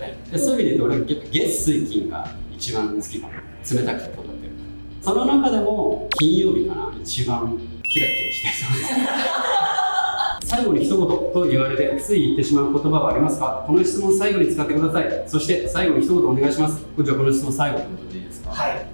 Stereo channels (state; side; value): inverted; both; correlation -1.00